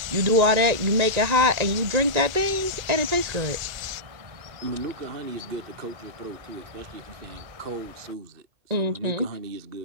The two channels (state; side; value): late; left; 1.9 ms